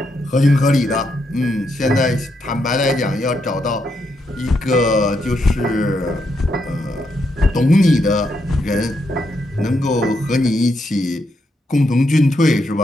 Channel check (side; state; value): both; normal; correlation 0.80